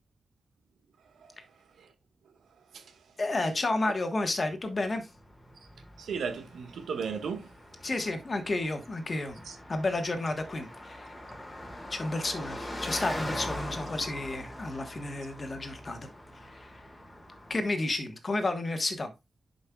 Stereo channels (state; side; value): normal; both; correlation 0.92